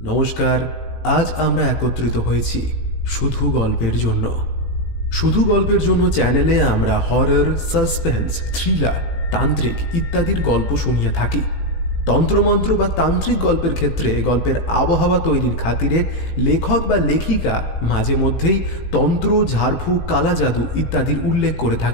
নমস্কার। আজ আমরা একত্রিত হয়েছি শুধু গল্পের জন্য। শুধু গল্পের জন্য চ্যানেলে আমরা হরর, সাসপেন্স, থ্রিলার, তান্ত্রিক ইত্যাদির গল্প শুনিয়ে থাকি। তন্ত্রমন্ত্র বা তান্ত্রিক গল্পের ক্ষেত্রে গল্পের আবহাওয়া তৈরির খাতিরে লেখক বা লেখিকা মাঝে মধ্যেই তন্ত্র, ঝাড়ফুঁক, কালা জাদু ইত্যাদির উল্লেখ করে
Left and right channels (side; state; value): right; late; 18 ms